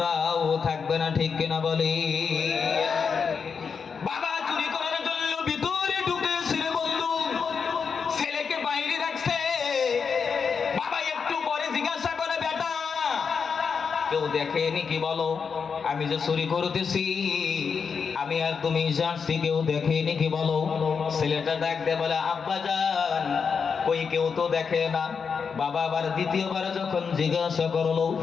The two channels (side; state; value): right; quieter; 5.9 dB